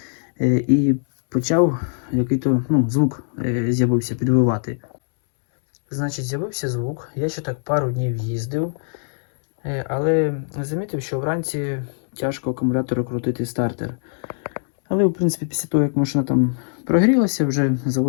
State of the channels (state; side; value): silent; right; digital silence